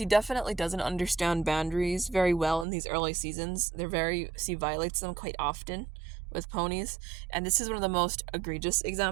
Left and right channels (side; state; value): left; drops out; at 2.7 s